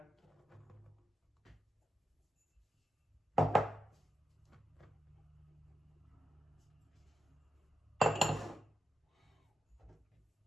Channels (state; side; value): normal; both; correlation 0.87